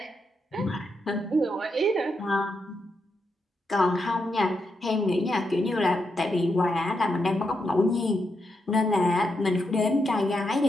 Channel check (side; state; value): both; normal; correlation 0.83